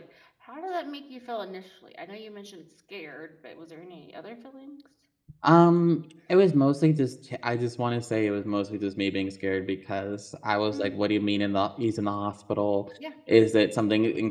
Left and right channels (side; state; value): both; identical; correlation 1.00